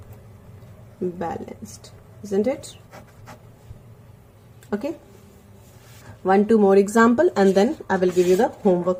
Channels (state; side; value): identical; both; correlation 1.00